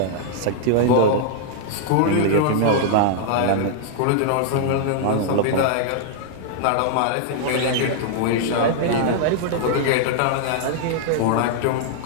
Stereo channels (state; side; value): different; both; correlation -0.01